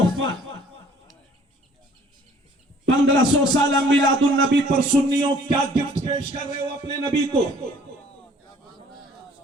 1500 साल मिलादुन नबी पर सुन्नियों क्या गिफ्ट पेश कर रहे हो अपने नबी को।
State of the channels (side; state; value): both; normal; correlation 0.56